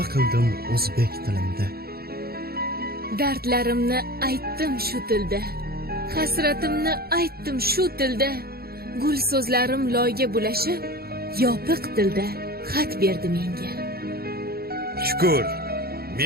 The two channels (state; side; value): late; left; 0.45 ms